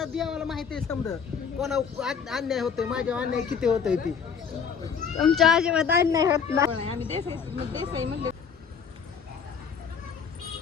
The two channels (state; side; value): quieter; right; 6.7 dB